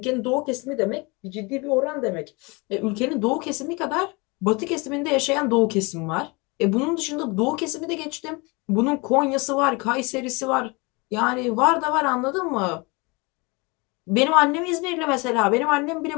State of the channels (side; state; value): right; quieter; 27.3 dB